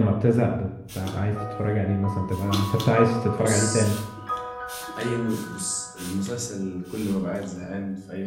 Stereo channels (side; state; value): both; identical; correlation 1.00